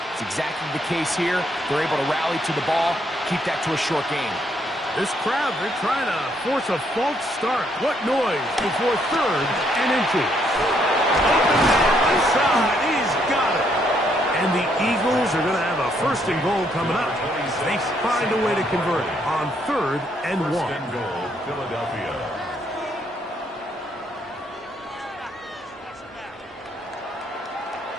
It's exactly the case here. They're able to rally to the ball, keep that to a short game. This crowd, they're trying to force a false start. What noise before 3rd and inches. Open man inside. He's got it. And the Eagles are going to have a 1st and goal coming up. They find a way to convert it on 3rd and 1. 1st and goal, Philadelphia.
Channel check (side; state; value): both; normal; correlation 0.72